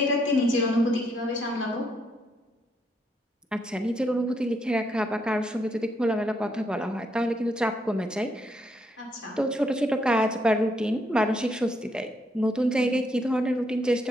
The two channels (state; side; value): normal; both; correlation 0.75